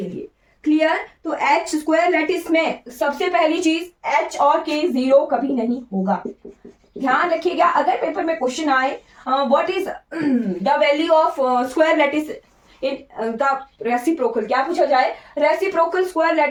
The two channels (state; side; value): identical; both; correlation 1.00